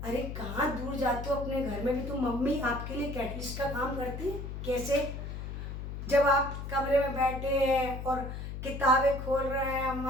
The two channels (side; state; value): left; noise; hum, 7 dB below the sound